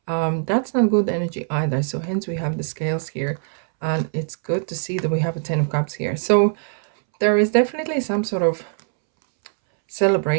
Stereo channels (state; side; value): silent; left; 64 dB below the other